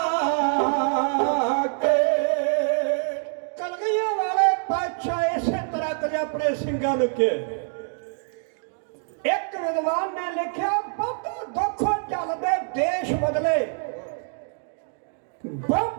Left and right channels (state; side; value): silent; left; 59 dB below the other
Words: ਕੇ ਕਲਗੀਆਂ ਵਾਲੇ ਪਾਤਸ਼ਾਹ ਇਸੇ ਤਰ੍ਹਾਂ ਕਦੇ ਆਪਣੇ ਸਿੰਘਾਂ ਨੂੰ ਕਿਹਾ। ਇੱਕ ਵਿਦਵਾਨ ਨੇ ਲਿਖਿਆ ਬਹੁਤੇ ਦੁੱਖ ਚੱਲਦੇ ਦੇਸ਼ ਬਦਲੇ,